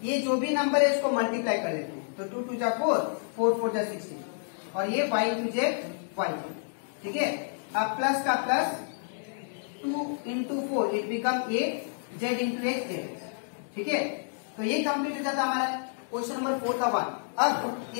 ये जो भी नंबर है उसको मल्टीप्लाई कर लेते हैं तो 2 2 जा 4 4 4 जा 16 और ये y इंटू जेड वाई। ठीक है, अब प्लस का plus 2 into 4 it become a z into x Z. ठीक है, तो ये कंप्लीट हो जाता हमारा क्वेश्चन नंबर 4 का 1। अब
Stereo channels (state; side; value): silent; right; digital silence